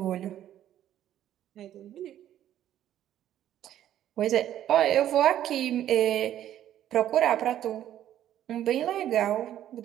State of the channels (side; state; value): left; quieter; 11.6 dB